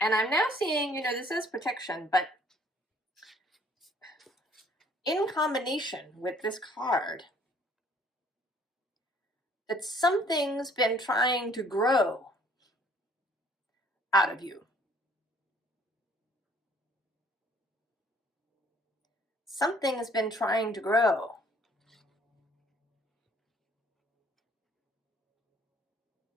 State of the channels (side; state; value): both; normal; correlation 0.59